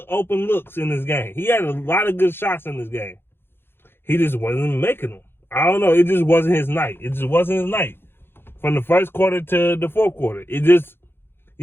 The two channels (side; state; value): right; late; 0.11 ms